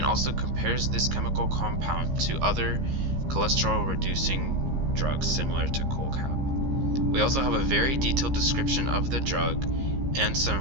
also compares this chemical compound to other cholesterol reducing drugs similar to CholCap. We also have a very detailed description of the drug and some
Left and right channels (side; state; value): left; late; 15 ms